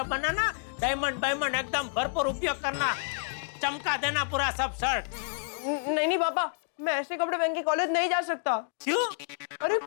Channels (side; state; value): right; silent; digital silence